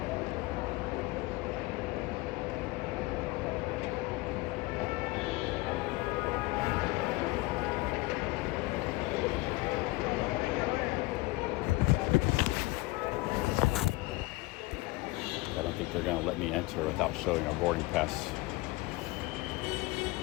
They're going to let me enter without showing a boarding pass,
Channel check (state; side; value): quieter; right; 21.3 dB